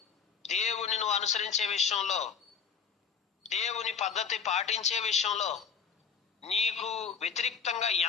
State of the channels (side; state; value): right; quieter; 6.5 dB